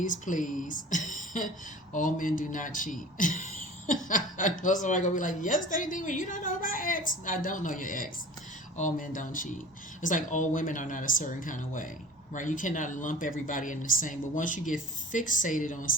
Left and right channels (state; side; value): normal; both; correlation 0.40